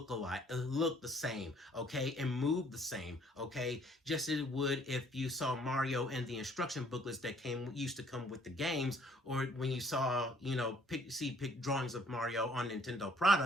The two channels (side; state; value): both; normal; correlation 0.61